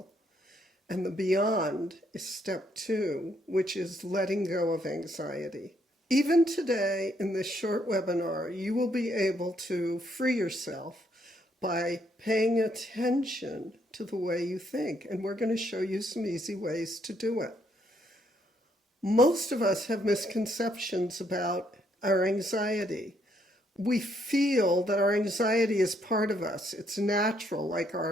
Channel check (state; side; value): normal; both; correlation 0.72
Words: And the beyond is step 2, which is letting go of anxiety. Even today, in this short webinar, you will be able to free yourself by paying attention to the way you think. And we're going to show you some easy ways to do it. Most of us have misconceptions about our anxiety. We feel that our anxiety is part of us. It's natural, like